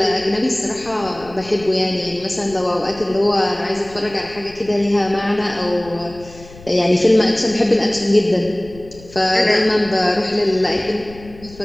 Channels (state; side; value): noise; left; rumble, 20 dB below the sound